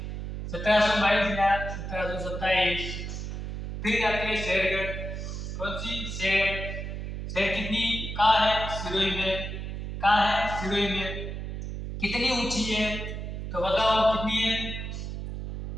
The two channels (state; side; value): noise; right; hum, 6 dB below the sound